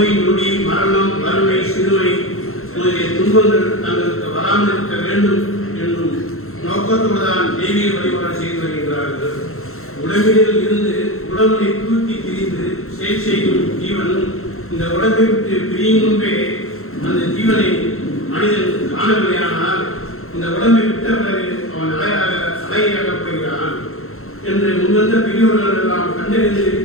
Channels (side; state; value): right; late; 0.62 ms